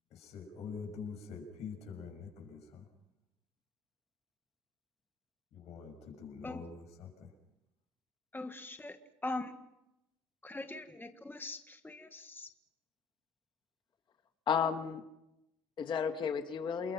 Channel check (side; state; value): right; quieter; 5.5 dB